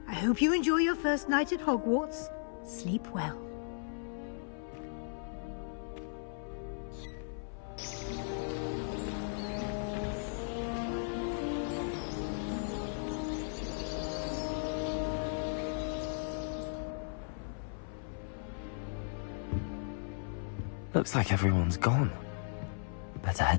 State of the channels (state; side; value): silent; right; 54 dB below the other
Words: I hope you enjoy your first night at Hogwarts. Sleep well. Looks like everyone's gone. Better